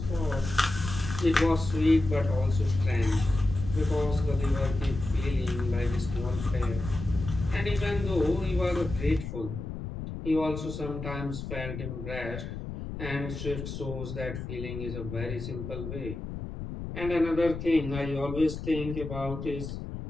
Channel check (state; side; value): noise; left; rumble, 7 dB below the sound